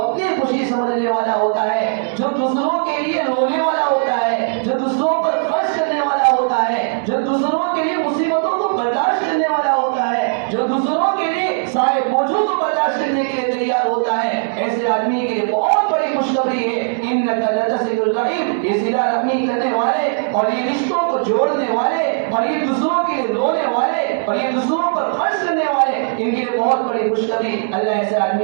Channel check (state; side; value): silent; left; digital silence